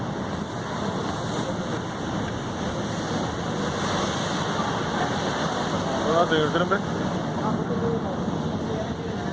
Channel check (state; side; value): identical; both; correlation 1.00